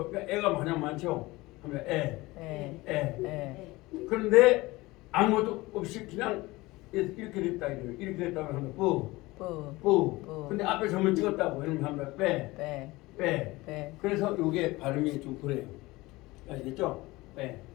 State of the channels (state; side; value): quieter; right; 20.8 dB